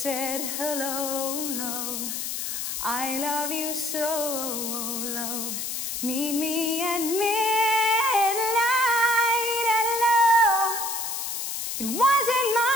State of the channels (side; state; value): left; noise; hiss, 4 dB below the sound